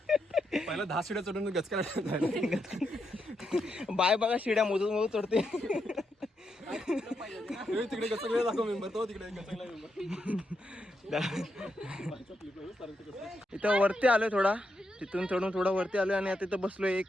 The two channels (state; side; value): normal; both; correlation 0.82